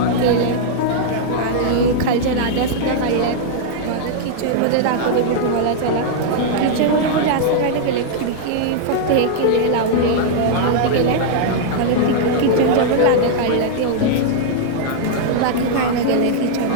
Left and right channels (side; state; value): both; different; correlation -0.01